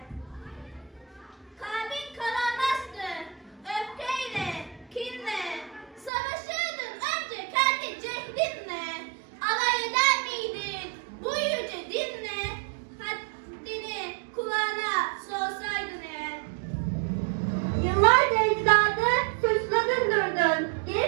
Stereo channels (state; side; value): drops out; left; at 6.1 s